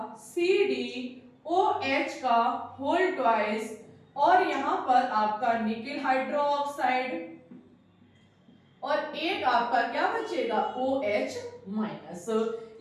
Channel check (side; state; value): both; identical; correlation 1.00